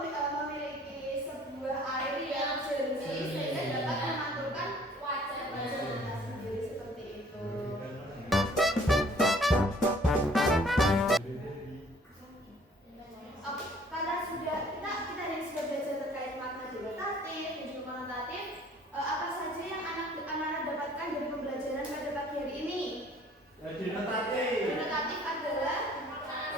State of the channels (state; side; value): normal; both; correlation 0.56